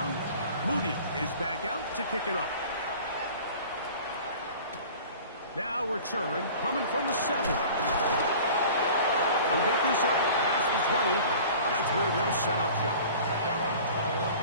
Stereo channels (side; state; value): both; inverted; correlation -0.43